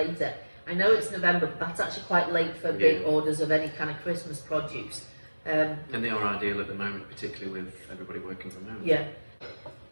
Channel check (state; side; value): inverted; both; correlation -1.00